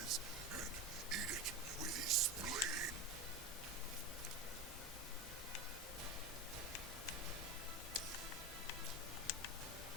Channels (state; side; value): normal; both; correlation 0.22